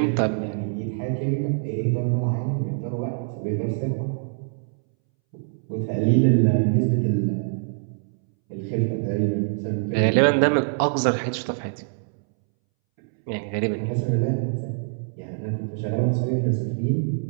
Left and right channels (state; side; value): silent; left; 62 dB below the other